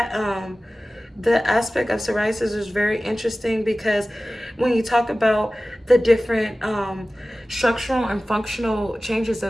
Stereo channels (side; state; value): both; normal; correlation 0.96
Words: the aspect of psoriasis is very interesting, because when you talk about the different structural and functional changes